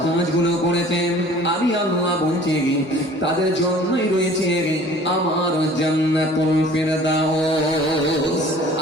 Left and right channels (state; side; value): normal; both; correlation 0.49